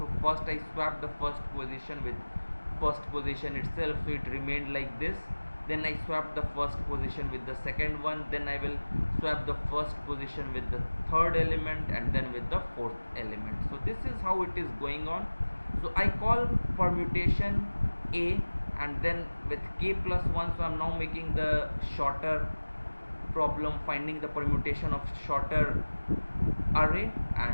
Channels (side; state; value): both; inverted; correlation -1.00